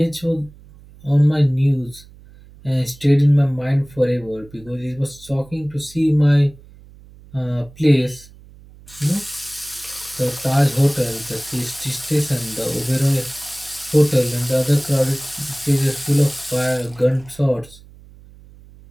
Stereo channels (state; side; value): noise; right; hum, 23 dB below the sound